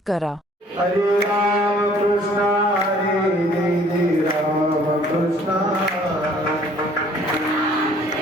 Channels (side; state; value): both; normal; correlation 0.57